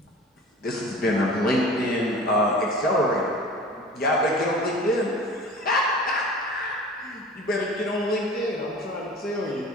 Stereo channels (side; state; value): both; normal; correlation 0.40